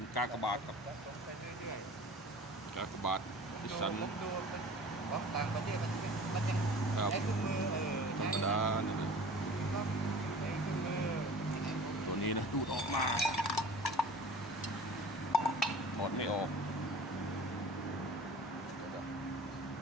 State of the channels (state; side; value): normal; both; correlation 0.42